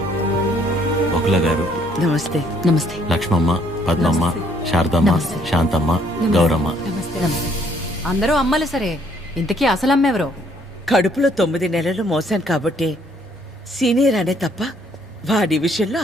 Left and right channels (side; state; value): both; normal; correlation 0.65